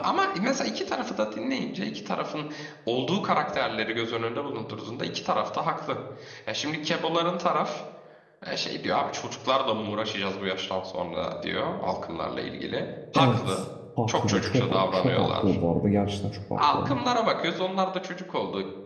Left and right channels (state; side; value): identical; both; correlation 1.00